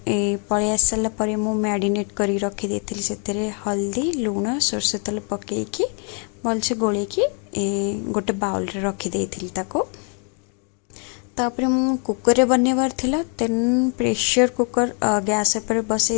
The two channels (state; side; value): quieter; right; 40.0 dB